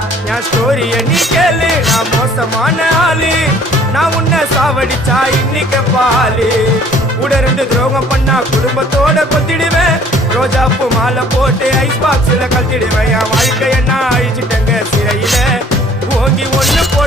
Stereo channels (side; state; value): both; normal; correlation 0.55